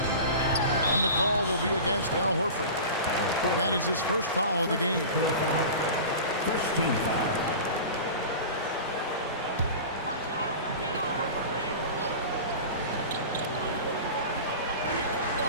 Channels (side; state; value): both; inverted; correlation -0.34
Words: And the call will be against Al Horford. That is his first foul of the game. First team foul.